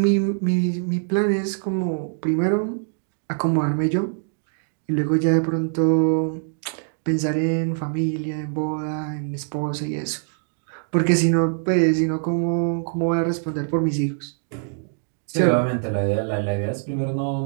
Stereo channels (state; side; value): silent; left; digital silence